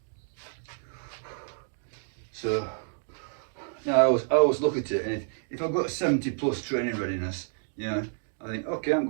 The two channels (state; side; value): silent; left; digital silence